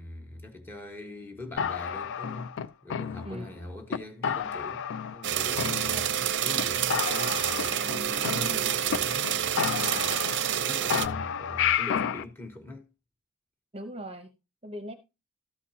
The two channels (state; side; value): normal; both; correlation -0.03